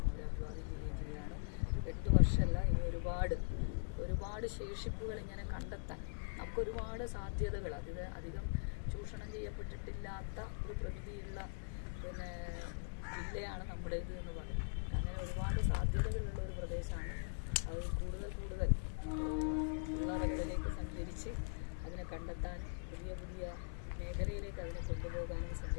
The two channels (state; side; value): silent; right; digital silence